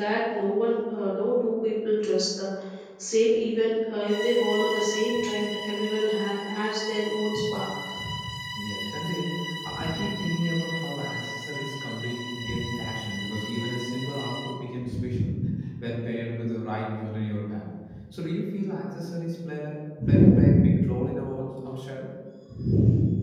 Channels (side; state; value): both; identical; correlation 1.00